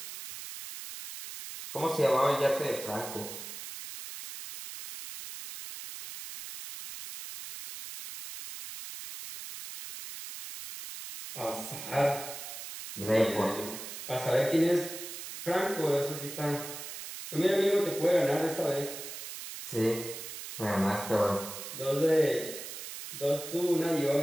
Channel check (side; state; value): right; noise; hiss, 10 dB below the sound